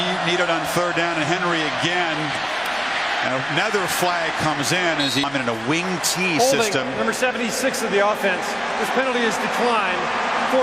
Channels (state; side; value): noise; right; rumble, 26 dB below the sound